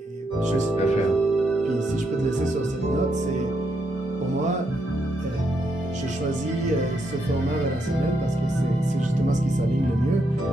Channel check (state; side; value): normal; both; correlation 0.79